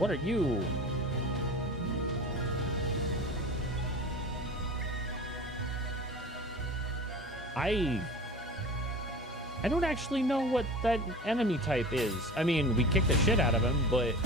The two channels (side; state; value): both; normal; correlation 0.36